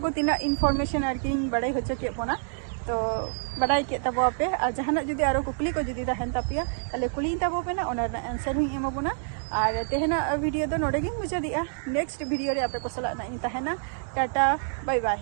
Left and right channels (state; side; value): silent; left; digital silence